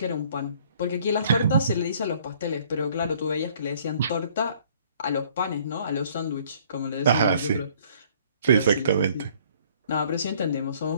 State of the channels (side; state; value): both; inverted; correlation -0.59